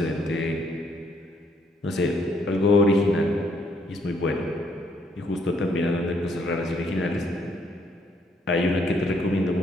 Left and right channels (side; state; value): both; normal; correlation 0.70